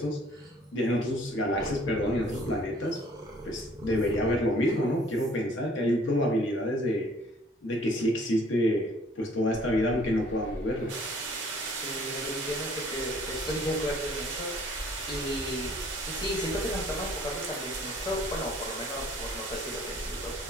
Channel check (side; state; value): both; normal; correlation 0.57